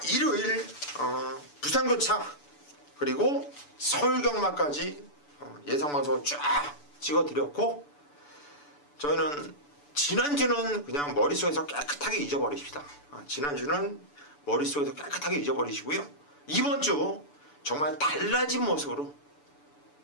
일요일 부산교차 그리고 서울경마까지 예상방송을 쫙 찍어드렸고 저희는 지난주는 그냥 머릿속에서 깨끗하게 잊어버리십시다. 지난주는 머릿속에서 깨끗하게 잊어버리시고요. 이번 주 정말 달라진 모습으로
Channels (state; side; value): late; right; 6.9 ms